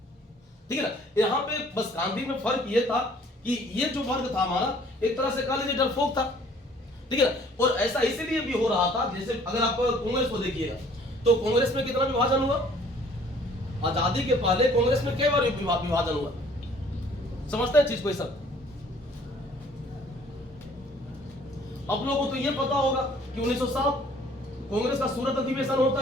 ठीक है ना। यहाँ पे बस गांधी में फर्क ये था कि ये जो वर्ग था हमारा एक तरह से कह लीजिए डरपोक था, ठीक है ना। और ऐसा इसीलिए भी हो रहा था, जैसे अगर आप कांग्रेस को देखिएगा तो कांग्रेस में कितना विभाजन हुआ, आजादी के पहले कांग्रेस में कई बार विभाजन हुआ, समझते हैं चीज को। सब आप लोगों को तो ये पता होगा कि 1907 कांग्रेस का सूरत अधिवेशन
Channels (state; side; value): normal; both; correlation 0.56